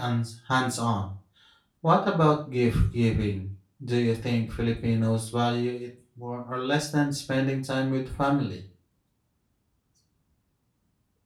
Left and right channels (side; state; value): both; identical; correlation 1.00